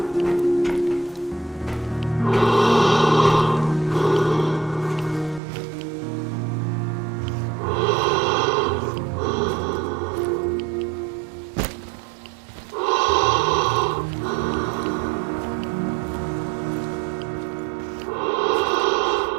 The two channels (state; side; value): drops out; left; at 5.4 s